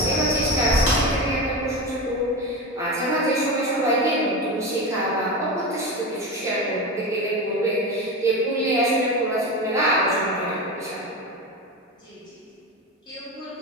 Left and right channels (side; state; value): both; normal; correlation 0.21